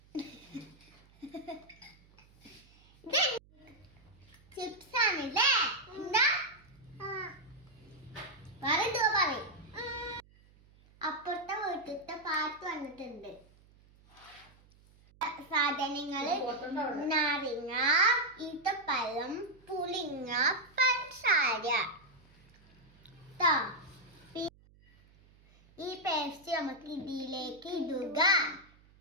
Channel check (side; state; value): right; noise; hum, 27 dB below the sound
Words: ചിപ്സ് ആണല്ലേ? എന്താ പറയും? അപ്പുറത്തെ വീട്ടിലത്തെ പാട്ട് വന്നിട്ടുണ്ട്. സാധനങ്ങള് നാരങ്ങ, ഈത്തപ്പഴം, പുളിങ്ങ, പഞ്ചസാര. ഈ പേസ്റ്റ് നമുക്ക് ഇതിലേക്ക് ഇടുക.